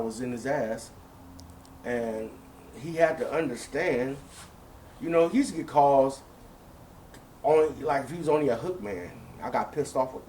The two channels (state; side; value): identical; both; correlation 1.00